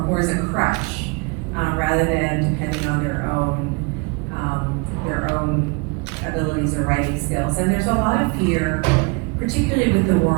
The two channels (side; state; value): left; quieter; 30.7 dB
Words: more as a crutch, rather than depending on their own abilities or writing skills. And there's a lot of fear, particularly with